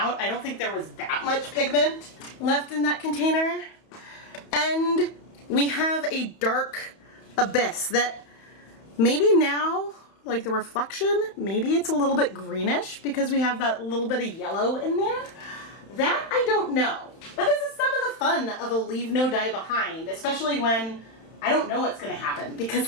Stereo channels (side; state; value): right; late; 31 ms